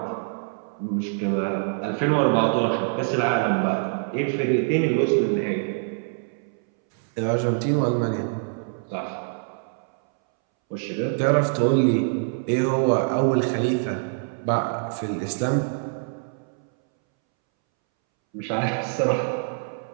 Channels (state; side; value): silent; left; 62 dB below the other